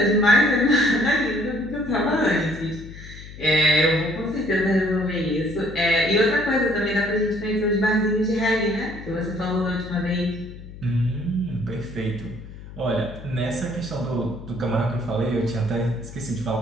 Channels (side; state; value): left; noise; hum, 15 dB below the sound